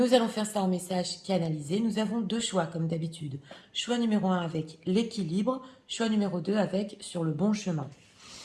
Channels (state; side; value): identical; both; correlation 1.00